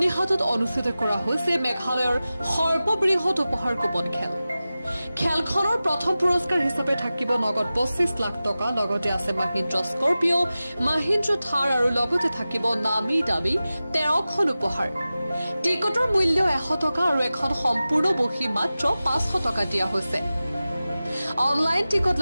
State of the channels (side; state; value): both; inverted; correlation -0.96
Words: অনুষ্ঠিত কৰা হৈছে মেঘালয়ৰ সৰ্ববৃহৎ উপহাৰ কুপন খেল। খেলখনৰ প্ৰথম পুৰস্কাৰ হিচাপে থাকিব নগদ 25 লাখ টকা, লগতে আছে মহিন্দ্ৰা স্কৰপিঅ', মহিন্দ্ৰা থাৰ আৰু লগতে থাকিব নামি দামী 13খন উপহাৰ। টিকটৰ মূল্য 100 টকা আৰু এখন সম্পূৰ্ণ বহী মাত্ৰ 500 টকা দিয়া হৈছে। অনলাইন টিকট